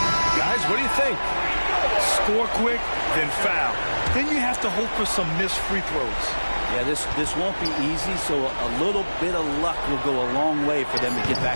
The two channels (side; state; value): both; inverted; correlation -1.00